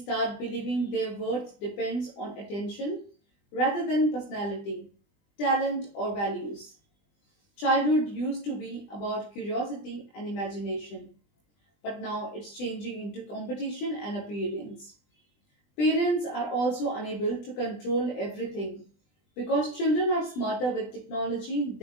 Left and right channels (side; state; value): right; late; 20 ms